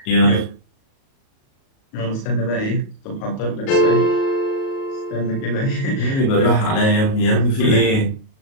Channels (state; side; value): late; right; 37 ms